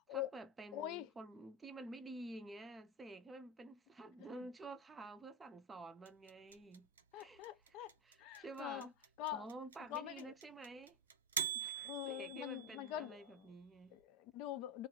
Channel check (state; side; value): normal; both; correlation 0.09